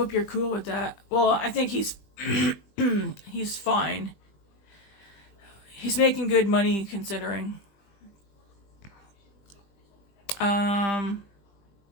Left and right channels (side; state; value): right; late; 20 ms